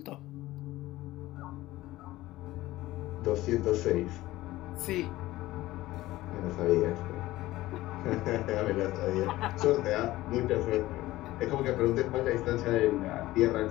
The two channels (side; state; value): right; quieter; 17.1 dB